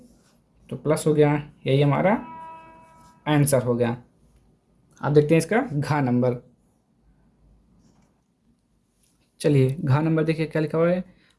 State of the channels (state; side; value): identical; both; correlation 1.00